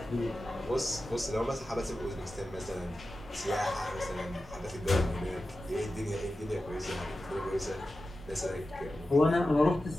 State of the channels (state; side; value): normal; both; correlation 0.93